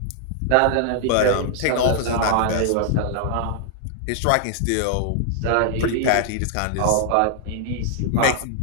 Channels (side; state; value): both; different; correlation 0.00